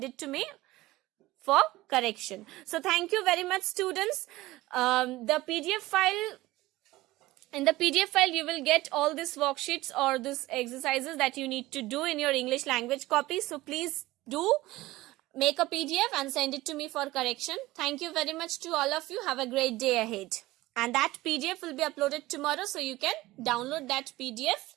it to me for correction. So thank you very much, students. The PDF file, in the PDF file, you will get all these worksheets or these exercises that you need to do in your English language copy. So please do make a PDF and send it to me for correction. Thank you very much to all of you. Have a great day ahead. And that PDF will be uploaded tomorrow, so you can download that PDF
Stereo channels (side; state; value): left; quieter; 18.2 dB